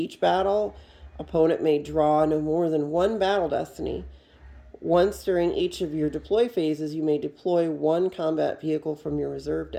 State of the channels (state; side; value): identical; both; correlation 1.00